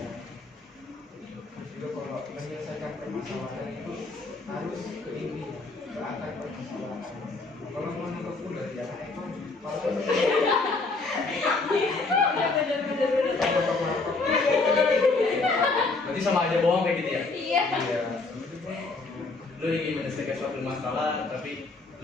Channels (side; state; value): right; quieter; 3.7 dB